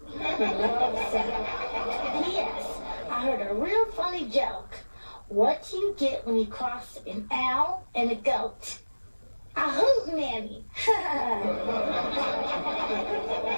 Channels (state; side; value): inverted; both; correlation -1.00